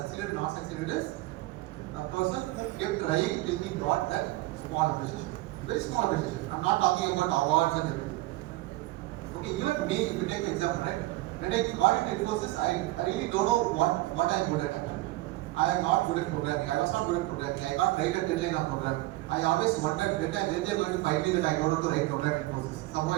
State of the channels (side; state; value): left; quieter; 18.7 dB